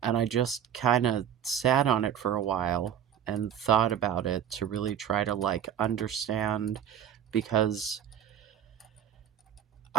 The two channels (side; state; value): left; quieter; 9.5 dB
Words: I just kind of sat on it for a while and thought about it to really try to like understand, because